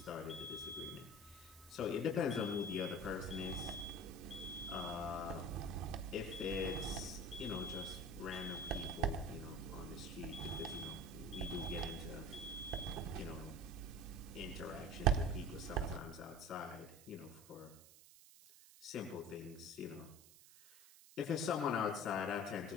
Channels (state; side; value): noise; right; hiss, 20 dB below the sound